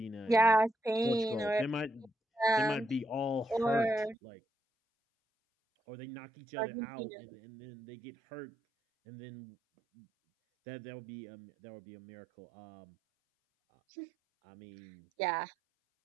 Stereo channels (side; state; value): left; drops out; at 4.2 s